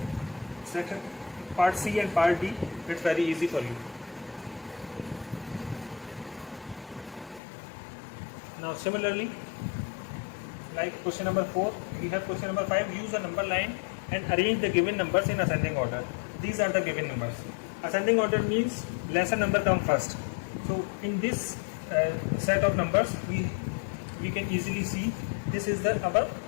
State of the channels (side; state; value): right; drops out; at 7.4 s